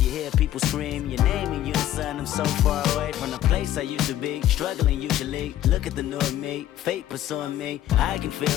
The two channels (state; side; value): quieter; right; 12.7 dB